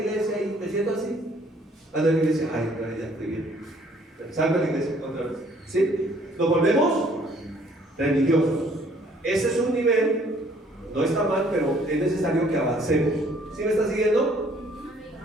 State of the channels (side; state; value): both; normal; correlation 0.61